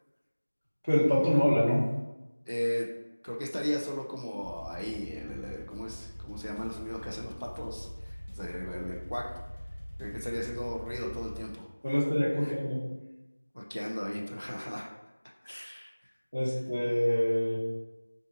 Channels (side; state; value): both; inverted; correlation -1.00